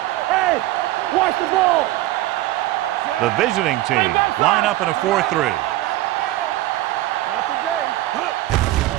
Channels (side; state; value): left; quieter; 16.4 dB